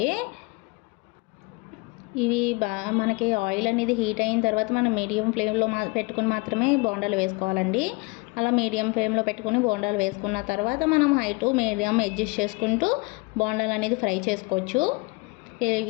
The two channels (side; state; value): right; quieter; 27.3 dB